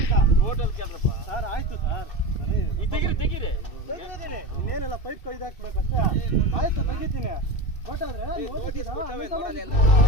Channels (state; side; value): late; right; 2.6 ms